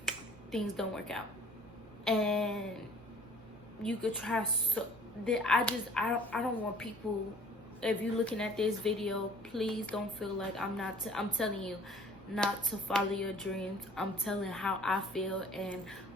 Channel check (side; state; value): both; normal; correlation 0.51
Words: things don't work out. And you could try so... I don't want people... If you're looking at this video, please don't feel like I'm telling you not to follow your dreams. I'm telling how I feel and